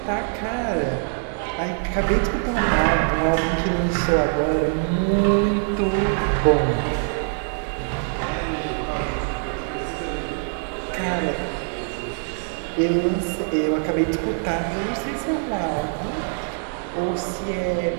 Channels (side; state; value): left; silent; 59 dB below the other